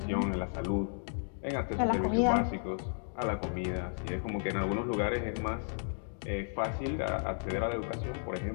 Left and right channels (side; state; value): right; silent; digital silence